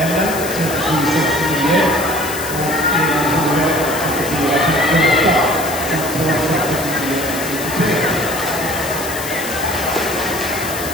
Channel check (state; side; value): noise; left; hiss, 8 dB below the sound